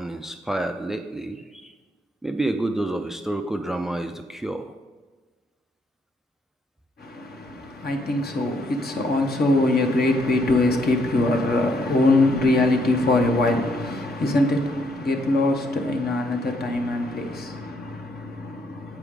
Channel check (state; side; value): normal; both; correlation 0.72